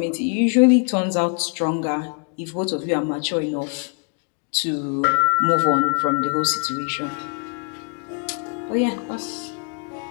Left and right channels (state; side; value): quieter; right; 37.6 dB